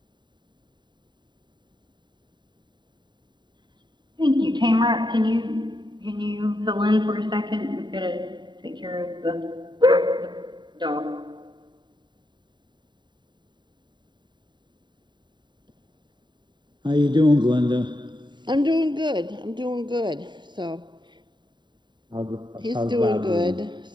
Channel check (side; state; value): left; late; 0.22 ms